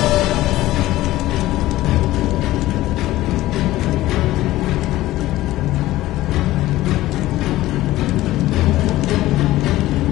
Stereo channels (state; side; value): quieter; right; 16.3 dB